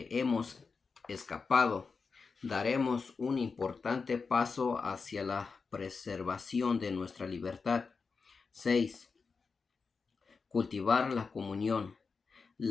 hemos escapado, daremos un importante paso hacia la preservación de nuestra libertad. 6. Cultivar la comunión.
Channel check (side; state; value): right; quieter; 4.9 dB